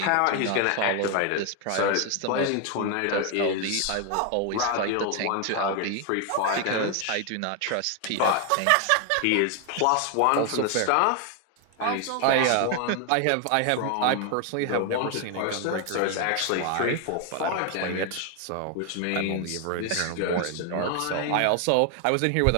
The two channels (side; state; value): both; different; correlation 0.01